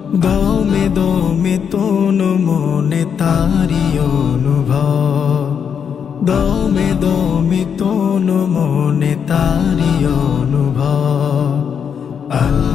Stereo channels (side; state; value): right; quieter; 7.3 dB